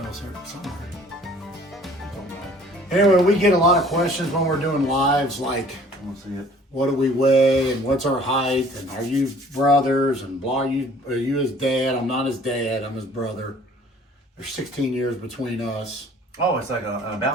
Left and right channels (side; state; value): both; normal; correlation 0.53